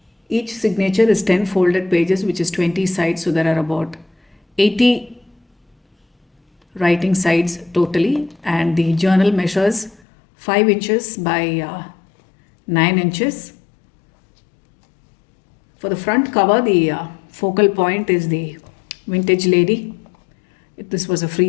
Each signature is 10 folded pages, which is 20 sides, so there are about 80 writing sides totally, and the journal measures 5 inches by 9 inches. For the front cover, the focal point is the vintage lady. This was a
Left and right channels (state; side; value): drops out; right; at 10.0 s